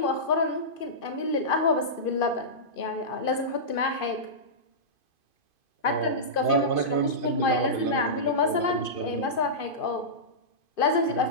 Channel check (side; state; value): right; late; 2.5 ms